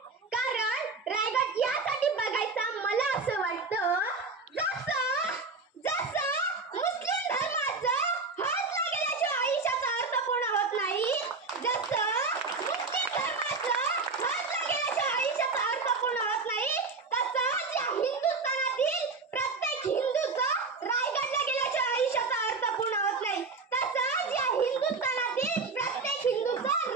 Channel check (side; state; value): left; quieter; 4.2 dB